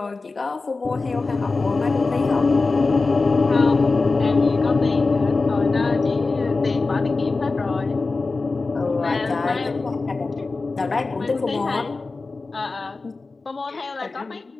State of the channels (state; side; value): quieter; right; 3.8 dB